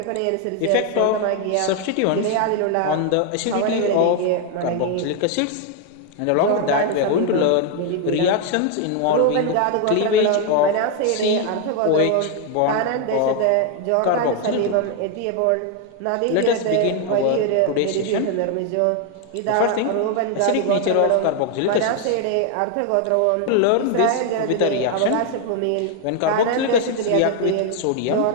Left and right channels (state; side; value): different; both; correlation 0.01